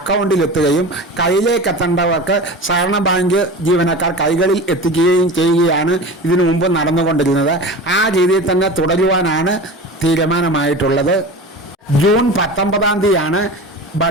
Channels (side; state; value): both; normal; correlation 0.32